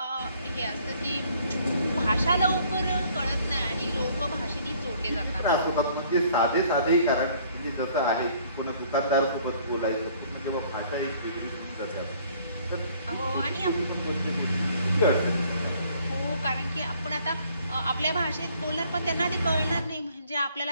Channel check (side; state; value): both; inverted; correlation -0.60